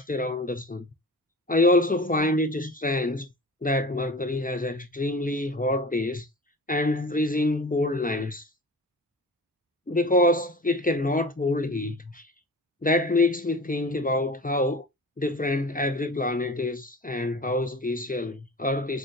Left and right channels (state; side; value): normal; both; correlation 0.36